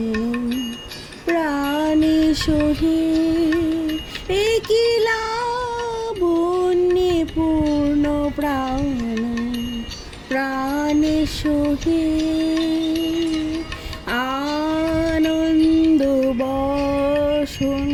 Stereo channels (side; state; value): both; identical; correlation 1.00